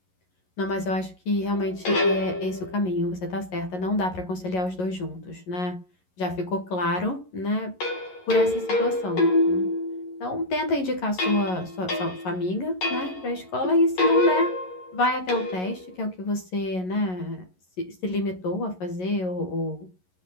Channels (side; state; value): right; late; 11 ms